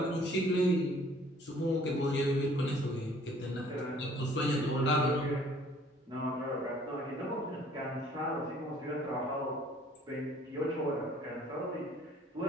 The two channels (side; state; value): both; normal; correlation 0.56